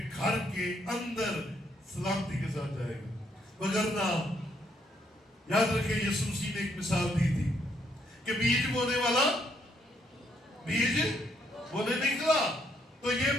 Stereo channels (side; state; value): both; normal; correlation 0.72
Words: گھر کے اندر سلامتی کے ساتھ جائے گا. وگرنہ یاد رکھیں یسوع مسیح نے ایک مثال دی تھی کہ بیج بونے والا بیج بونے نکلا، تو یہ